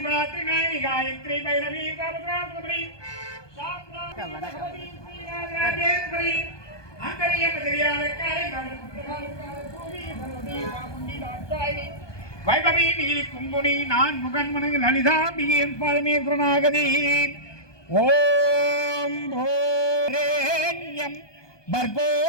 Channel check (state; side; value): late; right; 1.2 ms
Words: नायी गायत्री भैरवी सावित्री शास्त्रादेश्वरी अंतरिय मदरियालकाली वैभवी नीली कुंभुनी नान मुगन मन ललिता बियेन परमेश्वरनागदी ओम भोरेण्यम